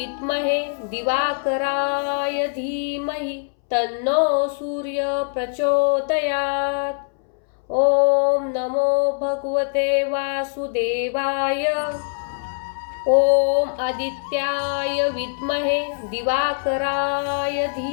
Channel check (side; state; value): right; silent; 64 dB below the other